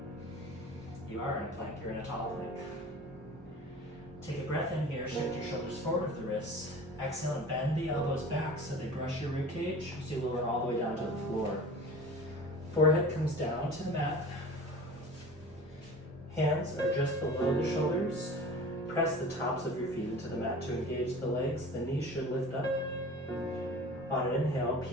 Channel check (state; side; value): normal; both; correlation 0.39